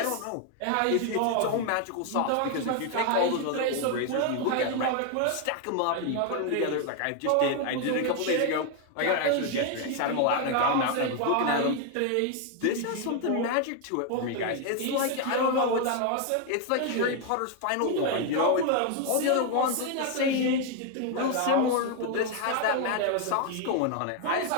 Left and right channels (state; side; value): different; both; correlation 0.01